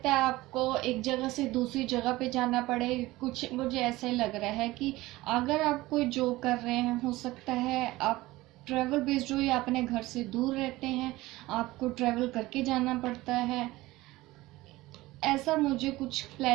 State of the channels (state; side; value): quieter; left; 18.8 dB